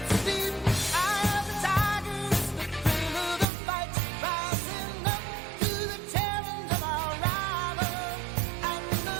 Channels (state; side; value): drops out; left; at 3.5 s